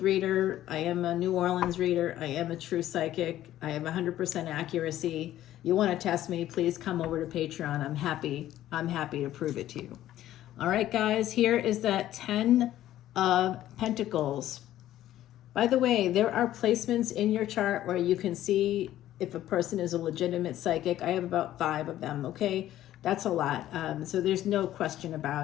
reader. I am a New Orleans reader. I am a true psychic. I have 100% accuracy. You want to test me, please come over to Patreon. I'm happy to prove it to you. All right, guys, here is that 10 of Pentacles. By the way, there are placements in your chart where you can see if a person is a legitimate psychic. I have about 5 of them, okay? That's a lot. So there's no question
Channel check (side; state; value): right; quieter; 13.3 dB